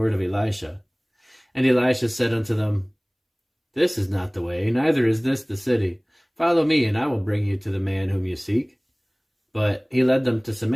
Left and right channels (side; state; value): both; identical; correlation 1.00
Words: of Elisha. And Elisha said unto them, This is not the way, neither is this the city. Follow me, and I will bring you to the man whom you seek. But he led them to